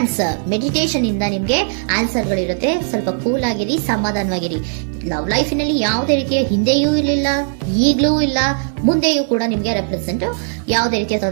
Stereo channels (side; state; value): left; silent; digital silence